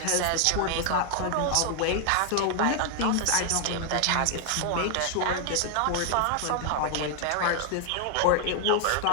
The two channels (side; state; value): both; different; correlation 0.00